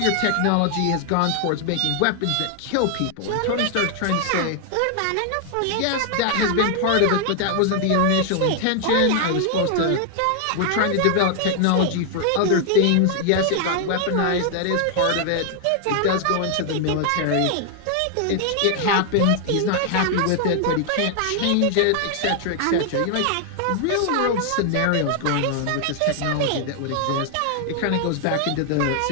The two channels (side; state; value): both; different; correlation 0.00